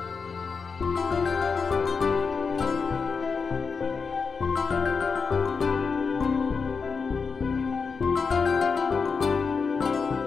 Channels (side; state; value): right; quieter; 5.2 dB